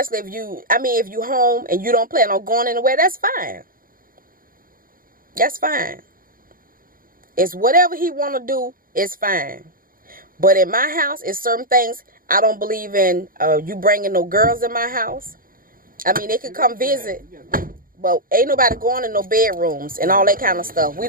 if you home and you don't plan on going anywhere, that's fine. That's fine. It's whatever he want to do, it's fine. But in my house, it's certain things I don't believe in. You bringing no girls in my house. I mean, they can come visit, but ain't nobody going in no bedrooms and all that kind of stuff. We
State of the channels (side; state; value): left; late; 0.41 ms